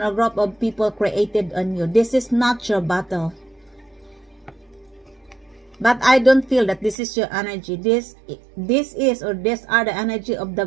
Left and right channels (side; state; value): left; drops out; at 7.0 s